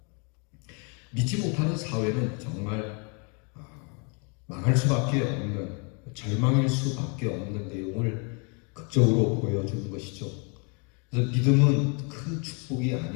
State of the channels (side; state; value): right; quieter; 35.4 dB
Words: 믿지 못하는 사회는 정말 망할 수밖에 없는, 절망일 수밖에 없는 내용을 극적으로 보여주는 것이죠. 그래서 믿음은 큰 축복이